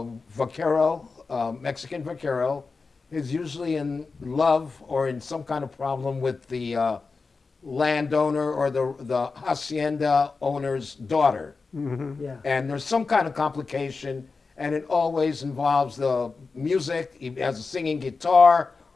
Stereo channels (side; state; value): right; quieter; 4.3 dB